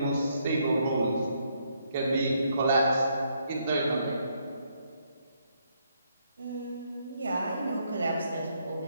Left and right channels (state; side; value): inverted; both; correlation -0.73